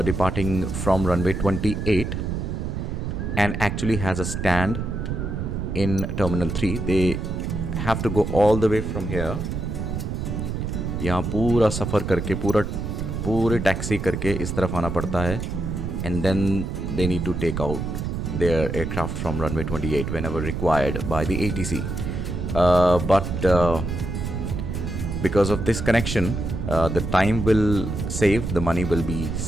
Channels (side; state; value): right; noise; rumble, 3 dB below the sound